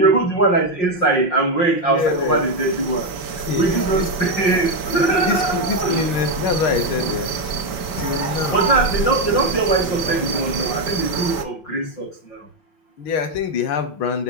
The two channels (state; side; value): late; right; 5.1 ms